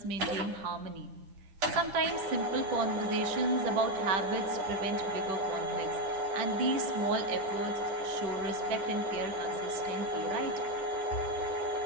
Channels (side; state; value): left; late; 10 ms